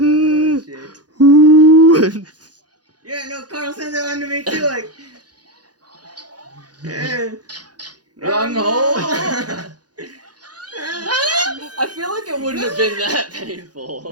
shit. Ooh. Yeah, no, Carl sent that one to me too. Like, Wrong hole. I feel like it wouldn't have been that painful.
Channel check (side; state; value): left; late; 0.69 ms